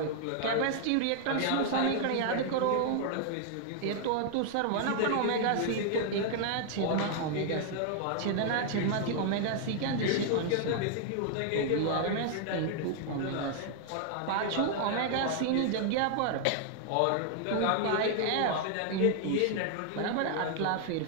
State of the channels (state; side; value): different; both; correlation 0.00